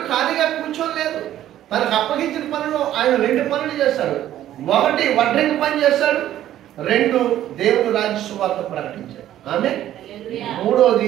ఖాళీగా కూర్చోలేదు. తనకు అప్పగించిన పనులు ఆయన 2 పనులు చేశాడు. 1 వడ్రంగి పని చేశాడు, 2 దేవుని రాజ్య సువార్త ప్రకటించాడు. ఆమె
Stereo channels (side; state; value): left; quieter; 12.4 dB